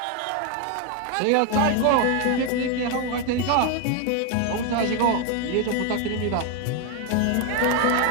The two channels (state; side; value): different; both; correlation 0.01